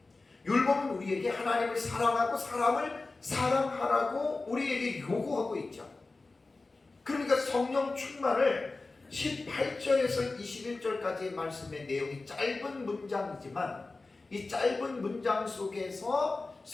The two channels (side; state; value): right; quieter; 3.5 dB